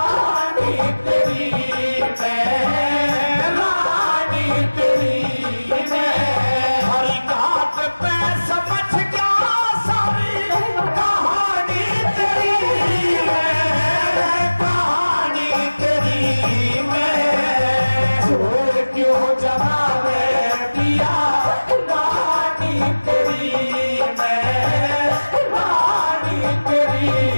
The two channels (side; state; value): both; inverted; correlation -1.00